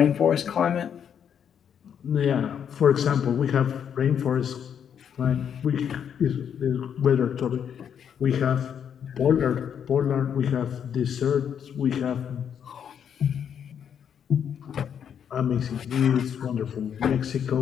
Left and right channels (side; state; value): right; quieter; 8.3 dB